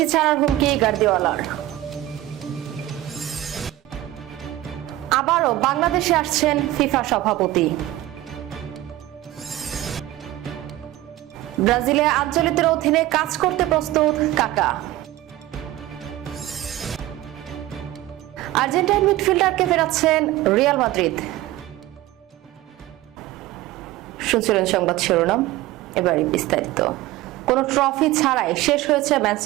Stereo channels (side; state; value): left; quieter; 15.7 dB